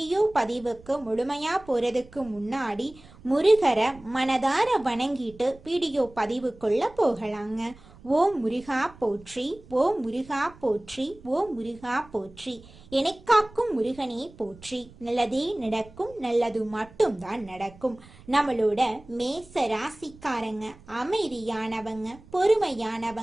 பதிவுக்கு முழுமையா போறதுக்கு முன்னாடி முருகரை மனதார வணங்கிட்டு வீடியோ பதிவுக்குள்ள போகலாங்க. ஓம் முருகா போற்றி, ஓம் முருகா போற்றி, ஓம் முருகா போற்றி. எனக்காக்கும் முருகனே போற்றி. நல்லதே நடக்கும், நல்லது மட்டும்தான் நடக்கும். நம்மளோட மேச ராசிக்காரங்க அமைதியானவங்க,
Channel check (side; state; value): right; noise; rumble, 23 dB below the sound